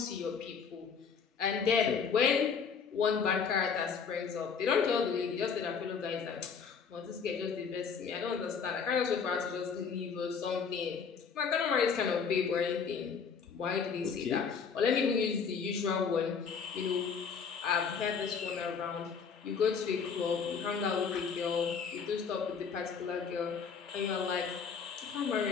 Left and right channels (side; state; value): right; quieter; 6.2 dB